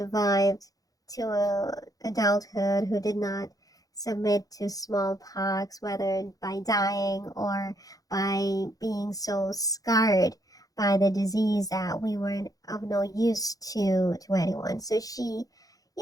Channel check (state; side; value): late; right; 0.17 ms